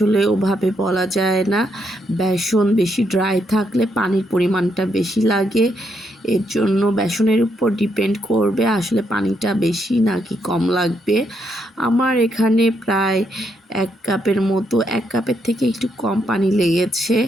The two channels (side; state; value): both; normal; correlation 0.77